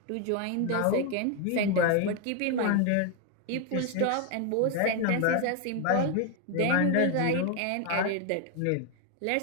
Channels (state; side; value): different; both; correlation 0.01